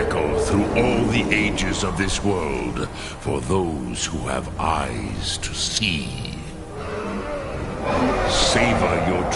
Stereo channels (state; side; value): identical; both; correlation 1.00